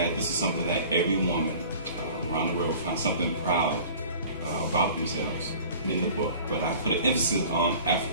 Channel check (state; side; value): inverted; both; correlation -0.45